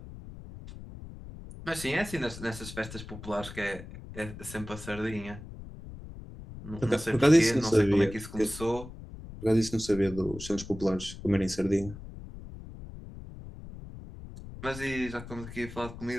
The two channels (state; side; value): noise; left; rumble, 13 dB below the sound